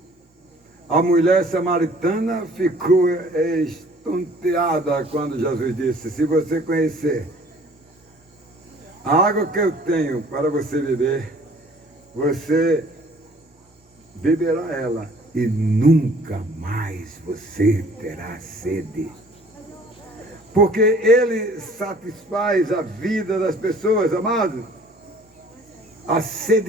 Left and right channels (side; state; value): both; normal; correlation 0.53